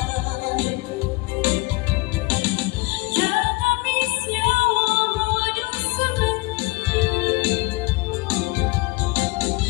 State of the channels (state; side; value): quieter; right; 24.4 dB